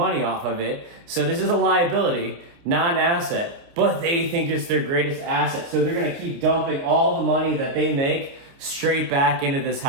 off of it. So this is a liability, not an asset. But they think it's their greatest asset. So they're going to keep dumping all the money that they make straight back into this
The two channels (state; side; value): late; left; 29 ms